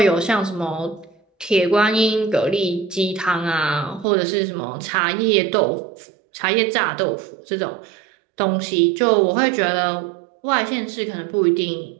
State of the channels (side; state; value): left; drops out; at 4.0 s